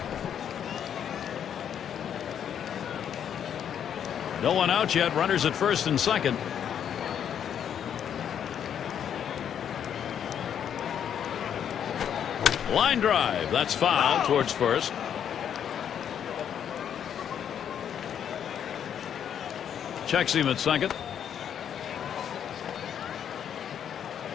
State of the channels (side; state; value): right; quieter; 8.9 dB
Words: No one out yet. Runners at first and second. Line drive. That's foul towards first. Checks him at second.